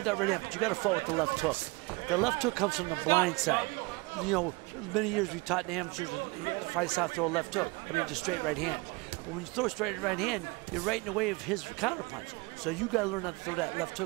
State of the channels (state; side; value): quieter; left; 26.0 dB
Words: that right hand, but you got to fight with the left hook. The left hook comes from the blind side. You know, many years we taught the amateurs to fight out, throw a left hook. I mean, just straight right hand. But when you throw a straight right hand, you're right in the way of his counterpunch. So you got to learn how to throw that left